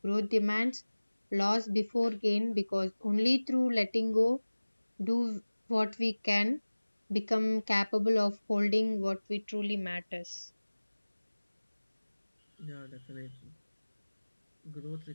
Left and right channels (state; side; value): inverted; both; correlation -1.00